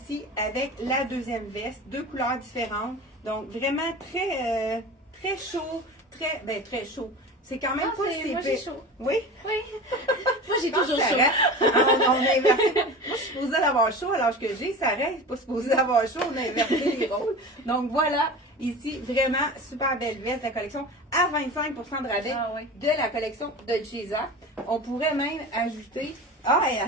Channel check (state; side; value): normal; both; correlation 0.33